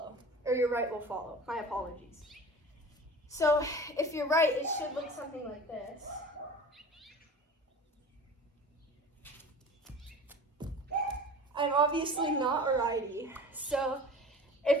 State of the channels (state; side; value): normal; both; correlation 0.39